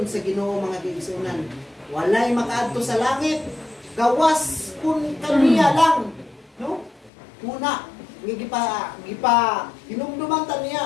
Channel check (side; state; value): right; drops out; at 7.1 s